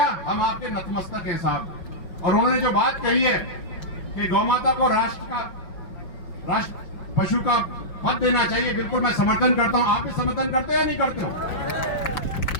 हम आपके नतमस्तक हैं साहब। और उन्होंने जो बात कही है कि गौ माता को राष्ट्र पशु का पद देना चाहिए, बिल्कुल मैं समर्थन करता हूं। आप भी समर्थन करते हो या नहीं करते हो?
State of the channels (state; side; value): late; right; 5.6 ms